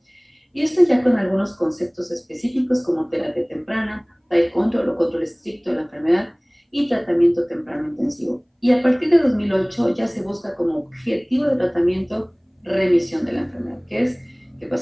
Y esto ya con algunos conceptos específicos como terapia temprana, tight control o control estricto de la enfermedad y tratamiento temprano intensivo. Y a partir de 2008 ya se busca como objetivo de tratamiento remisión de la enfermedad, que es que el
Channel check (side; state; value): both; identical; correlation 1.00